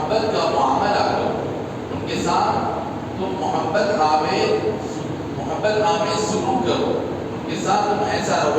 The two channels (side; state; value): both; identical; correlation 1.00